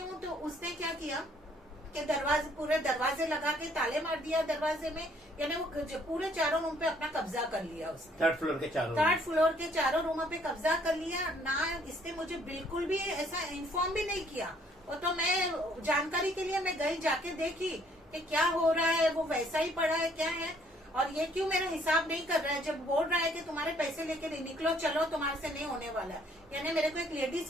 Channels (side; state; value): both; normal; correlation 0.63